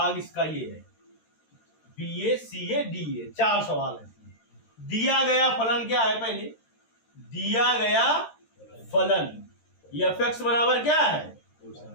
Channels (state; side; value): late; right; 13 ms